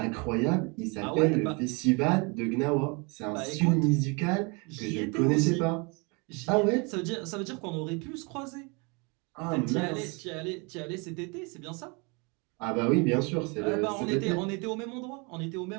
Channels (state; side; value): quieter; left; 30.6 dB